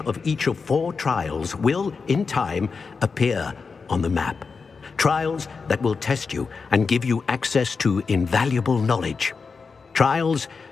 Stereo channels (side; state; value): right; quieter; 5.0 dB